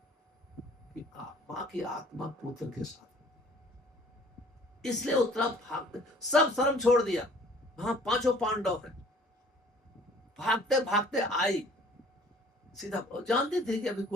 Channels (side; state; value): both; normal; correlation 0.53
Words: की आत्मा पुत्र के साथ, इसलिए उत्तरा भागते, सब शर्म छोड़ दिया। वहां 5 पांडव हैं, भागते भागते आई सीधा, जानती थी कि अभी